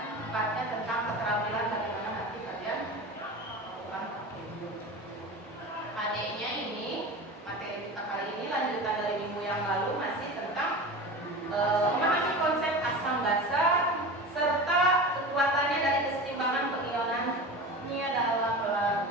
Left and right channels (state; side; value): normal; both; correlation 0.31